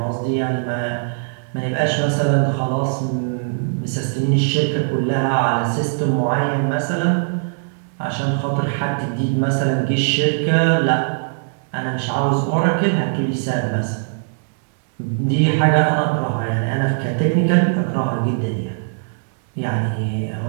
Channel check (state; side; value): silent; left; digital silence